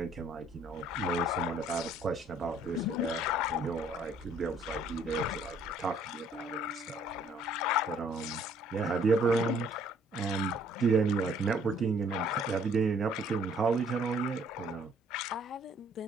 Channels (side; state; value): both; normal; correlation 0.61